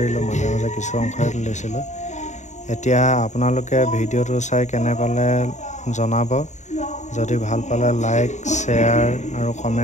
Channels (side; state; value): right; late; 0.34 ms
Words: মাজে মাজে কিছু অংশহে তুলিছিলোঁ। এতিয়া আপোনালোকে ভিডিঅ'টো চাই কেনে পালে জনাব। যদি ভাল পালে লাইক, শ্বেয়াৰ আৰু